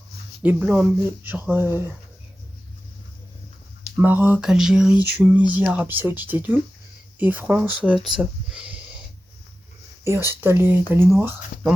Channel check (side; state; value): both; normal; correlation 0.94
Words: Les blancs, genre Maroc, Algérie, Tunisie, Arabie Saoudite et tout. Et France, tout ça. Et ensuite, t'as les noirs, dans